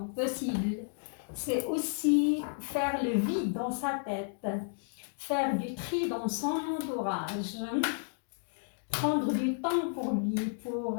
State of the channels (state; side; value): silent; right; digital silence